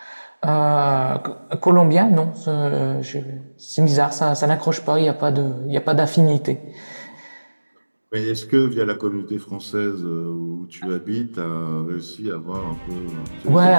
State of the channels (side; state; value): both; inverted; correlation -1.00